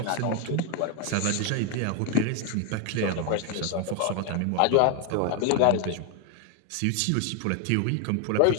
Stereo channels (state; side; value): different; both; correlation 0.01